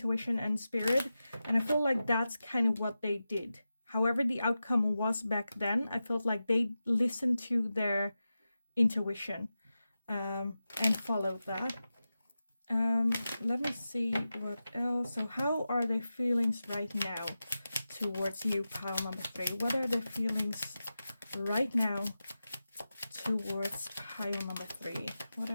and spirit. And I feel like that's kind of what they did. However the outcome was back then, I felt like they listened to their intuition and followed that. Let me see what else. So how are their feelings right now towards you, pile number 3? What are their feelings right now towards pile number 3? What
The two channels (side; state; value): both; inverted; correlation -0.93